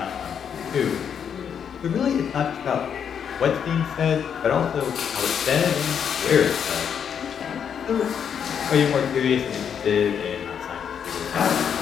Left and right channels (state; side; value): quieter; right; 7.8 dB